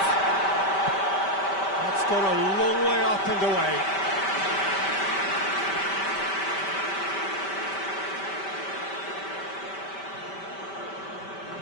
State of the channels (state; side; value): late; right; 5.1 ms